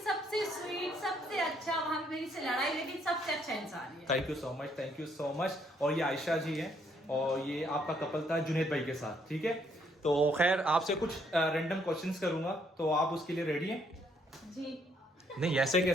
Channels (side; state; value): both; normal; correlation 0.70